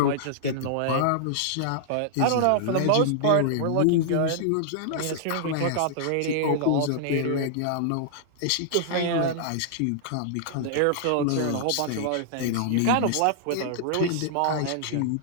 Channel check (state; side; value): different; both; correlation -0.01